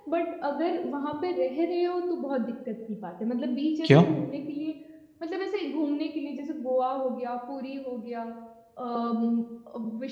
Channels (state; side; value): identical; both; correlation 1.00